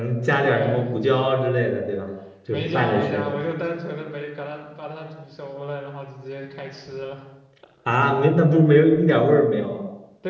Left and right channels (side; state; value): both; identical; correlation 1.00